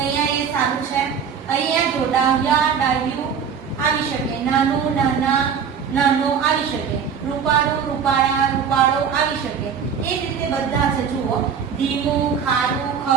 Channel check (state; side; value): quieter; left; 7.1 dB